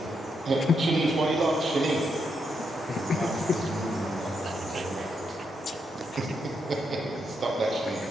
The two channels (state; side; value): normal; both; correlation 0.81